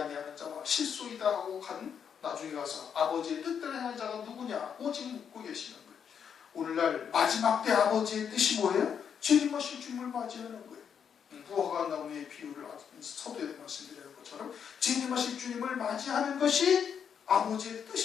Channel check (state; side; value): quieter; right; 7.6 dB